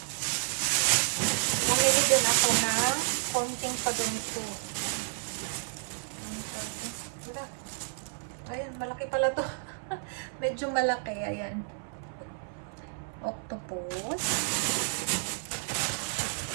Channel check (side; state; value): left; silent; 57 dB below the other